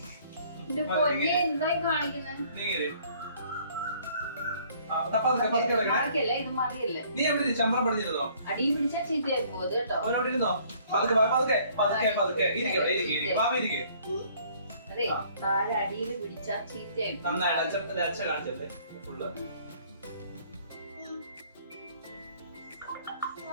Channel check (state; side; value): inverted; both; correlation -0.59